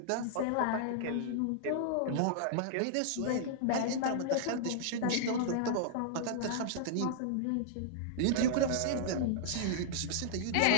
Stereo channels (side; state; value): both; different; correlation -0.01